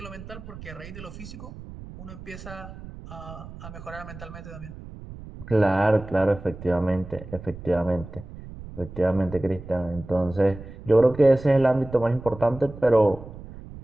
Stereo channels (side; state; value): right; noise; rumble, 14 dB below the sound